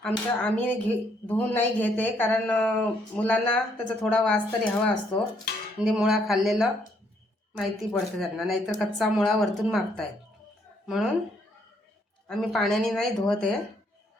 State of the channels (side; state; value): both; normal; correlation 0.70